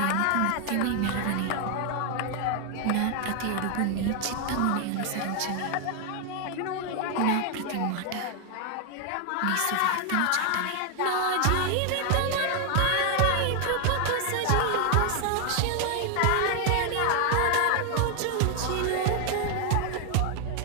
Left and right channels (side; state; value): both; different; correlation 0.00